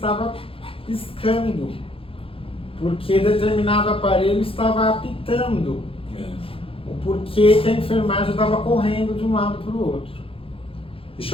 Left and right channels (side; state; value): right; late; 0.27 ms